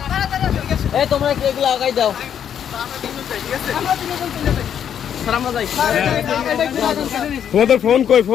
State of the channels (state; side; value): quieter; right; 8.9 dB